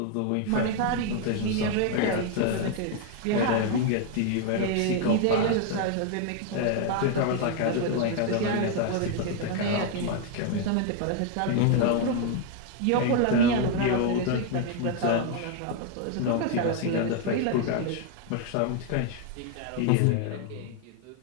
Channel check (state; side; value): different; both; correlation 0.00